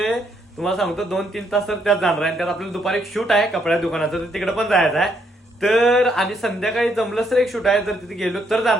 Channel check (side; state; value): both; normal; correlation 0.73